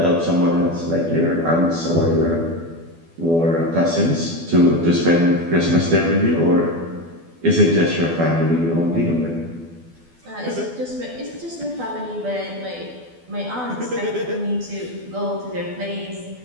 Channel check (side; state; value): left; late; 12 ms